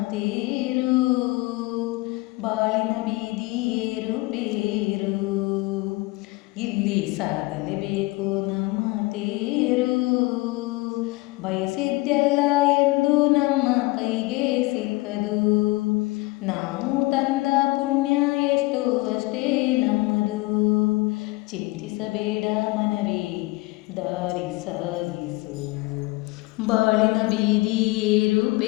ತೇರು. ಬಾಳಿನ ಬೀದಿ ಏರುಪೇರು, ಇಲ್ಲಿ ಸಾಗಲೇಬೇಕು ನಮ್ಮ ತೇರು. ಬಯಸಿದ್ದೆಲ್ಲ ಎಂದು ನಮ್ಮ ಕೈಗೆ ಸಿಕ್ಕದು, ನಾವು ತಂದ ಪುಣ್ಯ ಎಷ್ಟು ಅಷ್ಟೇ ನಮ್ಮದು. ಚಿಂತಿಸಬೇಡ ಮನವೇ, ದಾರಿ ಸಾಗಿಸು. ಬಾಳಿನ ಬೀದಿ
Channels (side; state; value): right; quieter; 22.4 dB